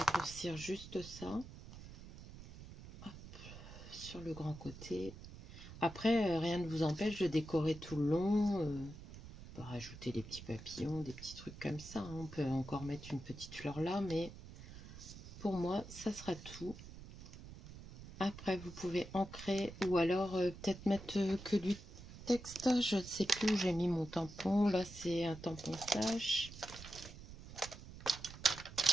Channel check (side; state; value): right; noise; rumble, 14 dB below the sound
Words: juste ça. Hop. Sur le grand côté. Après, rien ne vous empêche de décorer tout le long. On peut rajouter des petits papillons, des petits trucs comme ça. Hein. On peut encore mettre une petite fleur là, mais pour moi, ça sera tout. Après, vous pouvez ancrer ou alors peut-être mettre que du texte. Je ne sais plus où j'ai mis mon tampon. Là, c'est un tampon flash.